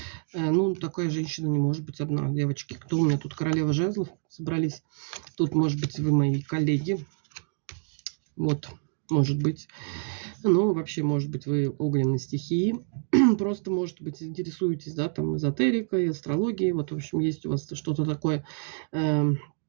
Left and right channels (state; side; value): silent; left; 60 dB below the other